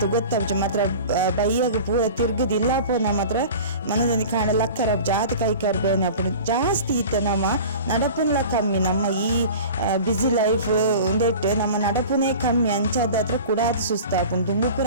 ಗೊತ್ತಾಪುಜಿ ಮಾತ್ರ ಬೈಯಾಗ ಪೂರ ತಿರ್ಗದಿಲ್ಲ ಪೋನ ಮಾತ್ರ ಮನದಲ್ಲಿ ಕಾಣ ಲಕ್ಕರ ಜಾತಿ ಕೈಕಾರ್ ಬೇನೆ ಅಪ್ಪು ಜಾಸ್ತಿ ಇತ್ತ ನಮ್ಮ ನಡಪುನ್ಲ ಕಮ್ಮಿ ನಮ್ಮ ಈ ಬ್ಯುಸಿ ಲೈಫ್ ಒಂದೇಟ್ ನಮ್ಮ ನಡಪುನೇ ಕಮ್ಮಿ ಅಂಚಾದ ಹತ್ರ ಕೂಡ ಆತು ಸುಸ್ತಾಪುಂಡು ತುಂಬು ಪೂರ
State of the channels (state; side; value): inverted; both; correlation -0.38